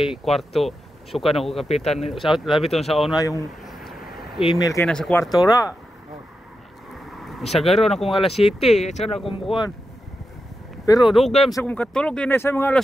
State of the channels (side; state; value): both; normal; correlation 0.89